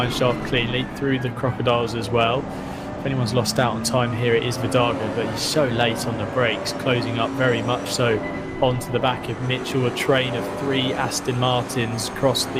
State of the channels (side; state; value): both; identical; correlation 1.00